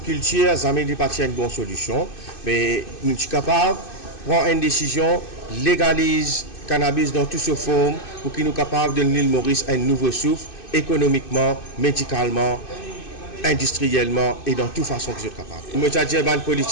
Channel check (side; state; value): right; late; 2.6 ms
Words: ça n'est pas une bonne solution. Mais nous sommes capables de prendre une décision, légalise cannabis dans toute sa forme pour qu'il nous capables de donner l'île Maurice un nouveau souffle, économiquement, médicalement, industriellement et dans toute façon que vous êtes capable. Je veux dire aux